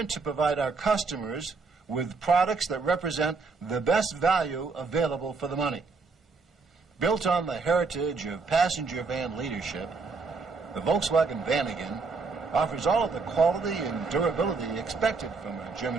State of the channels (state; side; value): quieter; left; 4.4 dB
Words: to provide our customers with products that represent the best value available for the money. Built on the heritage of passenger van leadership, the Volkswagen Vanagon offers all of the quality and durability expected from a